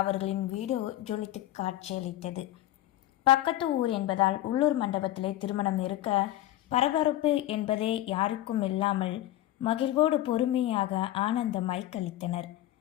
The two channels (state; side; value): quieter; right; 14.3 dB